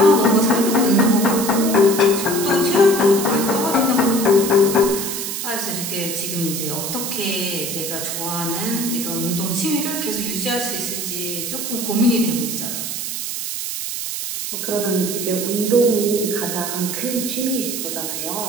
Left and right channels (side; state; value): right; noise; hiss, 4 dB below the sound